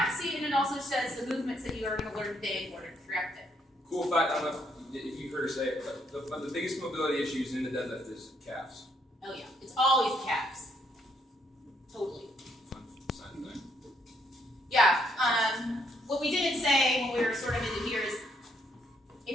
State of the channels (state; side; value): normal; both; correlation 0.72